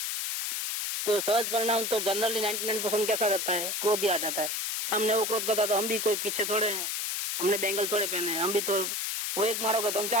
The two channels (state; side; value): noise; left; hiss, 1 dB below the sound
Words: तो सहज परिणाम तो जनरली 99% कैसा रहता है, क्रोध ही आ जाता है। हमने वो क्रोध करता तो हम भी कोई पीछे थोड़े हैं, हमने बैंगल थोड़े पहने हैं, हम भी तो वो एक मारोगे तो हम